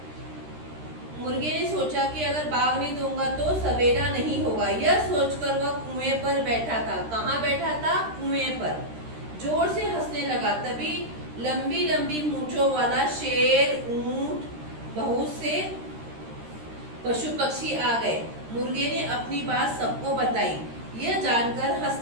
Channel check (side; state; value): left; late; 13 ms